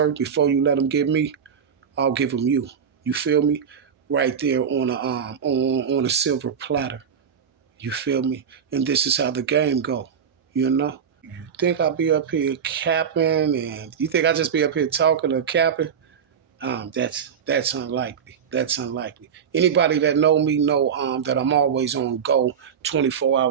before you let them get me, I'll give them you. You feel me? Right there on a silver platter. You feel me? And this is how the game go. You know? You think I'll be up here capping, and you think I just be up here talking or capping? That's unlikely. That's unlikely. Anybody that know me know that I'm always on go 24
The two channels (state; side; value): quieter; left; 7.4 dB